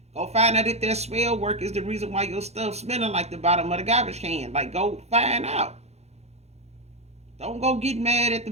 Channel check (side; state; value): left; late; 0.31 ms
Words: Go find out if that smell work is the reason why your stuff smelling like the bottom of the garbage can. Like, go find out. Don't go get mad at the